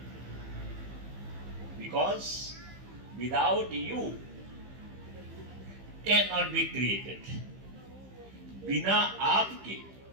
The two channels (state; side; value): late; left; 15 ms